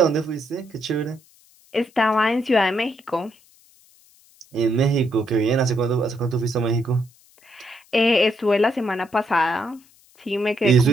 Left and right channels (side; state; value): left; noise; hiss, 30 dB below the sound